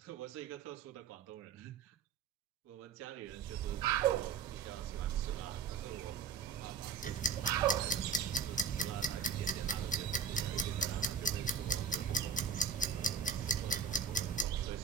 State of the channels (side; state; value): left; quieter; 5.9 dB